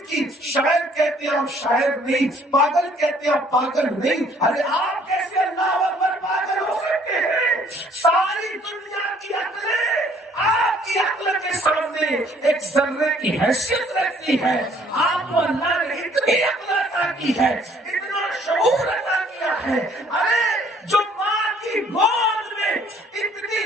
نہیں, پاگل کہتے ہیں پاگل نہیں. ارے آپ کیسے اللہ اکبر پاگل ہو سکتے ہیں؟ ساری دنیا کی عقلیں آپ کی عقل کے سامنے ایک ذرے کی حیثیت رکھتی ہے. آپ کو اللہ نے اتنی عقل عطا کی ہے, اتنا شعور عطا کیا ہے. ارے جو ماں کی گود میں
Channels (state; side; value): normal; both; correlation 0.60